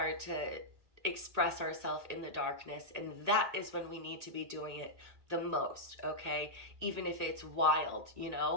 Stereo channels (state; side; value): late; left; 1.8 ms